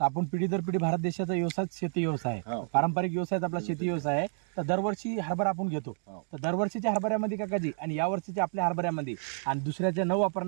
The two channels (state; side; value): silent; left; digital silence